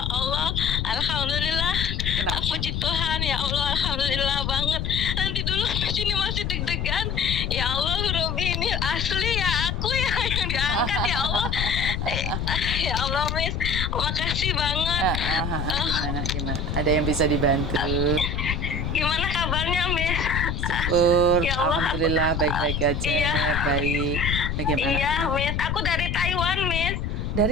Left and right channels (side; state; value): left; noise; rumble, 2 dB below the sound